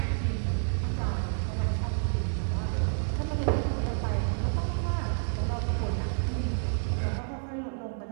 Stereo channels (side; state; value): left; silent; 58 dB below the other